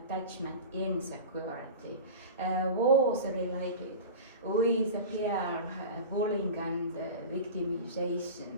insecurity was related with peer bullying and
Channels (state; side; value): inverted; both; correlation -0.32